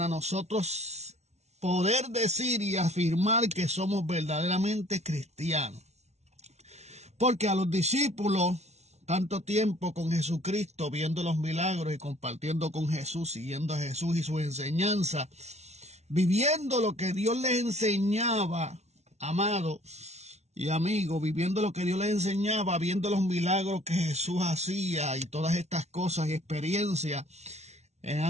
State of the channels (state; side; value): late; left; 0.32 ms